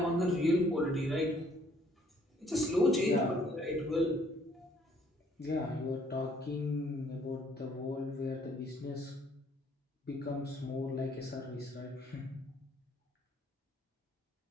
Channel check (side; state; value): both; normal; correlation 0.63